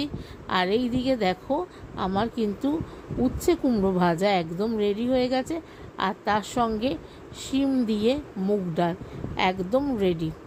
আর এই দিকে দেখো আমার কিন্তু উচ্ছে কুমড়ো ভাজা একদম রেডি হয়ে গেছে, আর তার সঙ্গে শিম দিয়ে মুগ ডাল একদম রেডি।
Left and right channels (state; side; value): identical; both; correlation 1.00